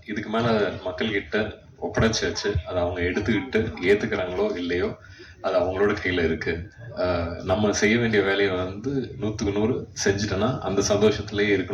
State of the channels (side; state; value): both; identical; correlation 1.00